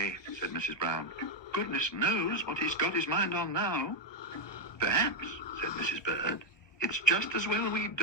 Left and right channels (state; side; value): late; right; 1.2 ms